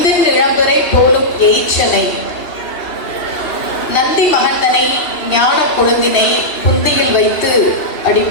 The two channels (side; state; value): right; late; 2.9 ms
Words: இளம்பரை போலும் எயிற்றனை நந்தி மகந்தனை ஞான கொழுந்தினை புந்தியில் வைத்து அடி